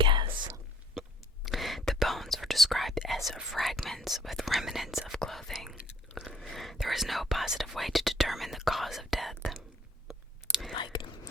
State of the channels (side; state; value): both; normal; correlation 0.60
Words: bones were described as fragments with remnants of clothing. There was no positive way to determine the cause of death. Like,